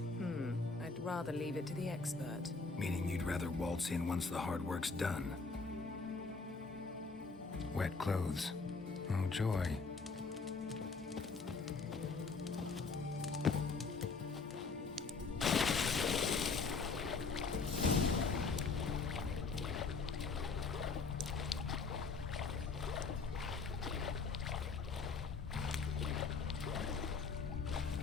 I'd rather leave it to the expert. Meaning you'd rather waltz in once the hard work's done? Wet clothes. Oh, joy.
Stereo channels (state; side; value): quieter; right; 4.4 dB